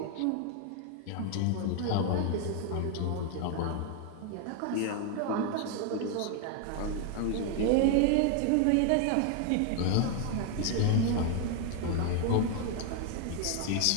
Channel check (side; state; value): both; different; correlation 0.00